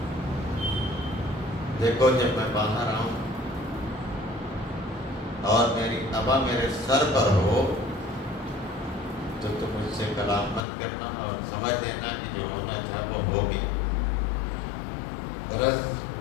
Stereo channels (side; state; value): right; drops out; at 10.6 s